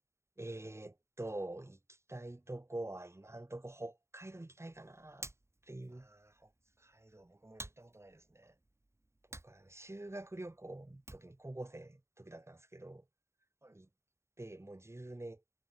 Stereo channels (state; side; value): late; left; 0.13 ms